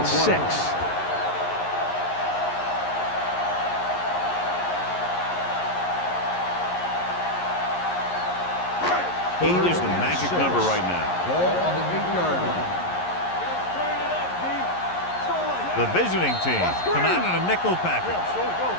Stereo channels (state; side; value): late; right; 11 ms